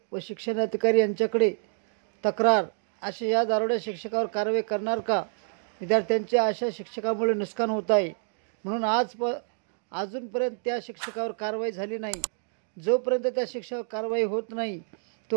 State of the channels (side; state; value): left; silent; 59 dB below the other